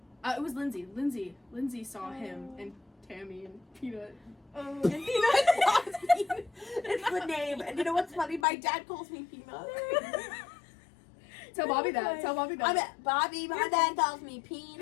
It was Lindsay. Lindsay saw him and Tammy and Peanut. Oh, and Peanut. It's the name. And you know what's funny? My dad calls me Peanut. Tell Bobby that. Tell Bobby that. I'm at Bobby. My dad calls me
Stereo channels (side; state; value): right; drops out; at 8.5 s